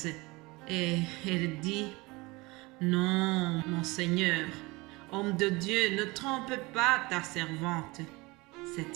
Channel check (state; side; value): quieter; left; 23.7 dB